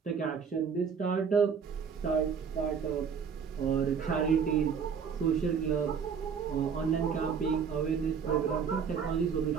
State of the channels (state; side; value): quieter; left; 6.6 dB